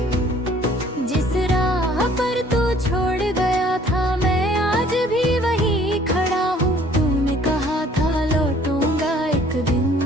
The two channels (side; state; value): both; normal; correlation 0.56